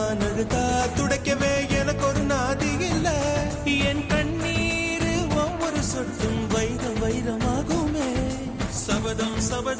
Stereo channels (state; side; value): identical; both; correlation 1.00